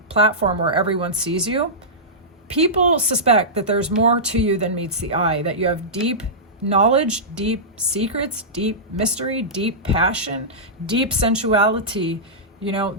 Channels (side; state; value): both; normal; correlation -0.15